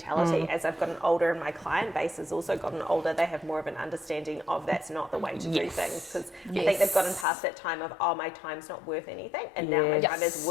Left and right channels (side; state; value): right; drops out; at 7.2 s